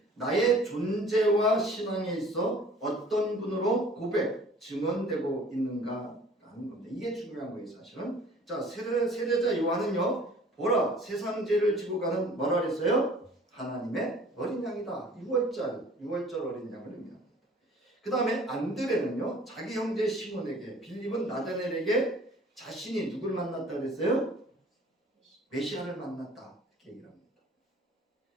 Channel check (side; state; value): both; normal; correlation 0.50